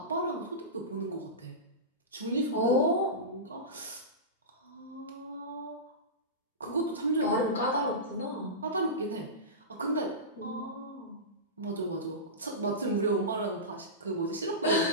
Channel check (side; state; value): both; normal; correlation -0.19